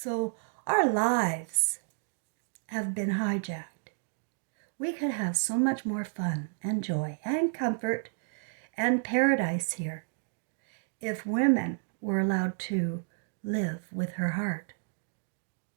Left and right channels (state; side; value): silent; left; digital silence